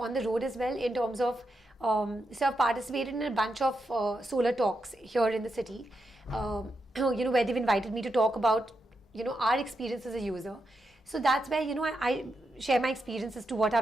the road as well, in terms of so I've participated in a bunch of solar talks here in the city, where they've invited me to talk about our experience as a user. So that's where I share my experiences to what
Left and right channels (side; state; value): both; normal; correlation 0.85